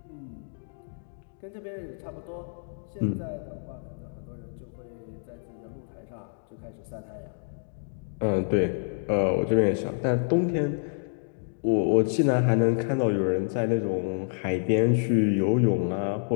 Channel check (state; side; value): silent; right; digital silence